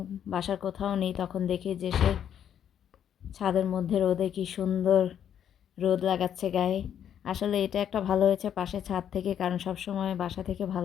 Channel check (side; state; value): right; quieter; 9.3 dB